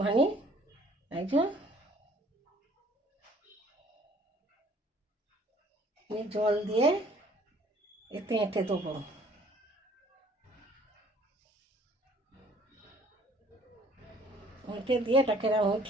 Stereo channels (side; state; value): both; normal; correlation 0.57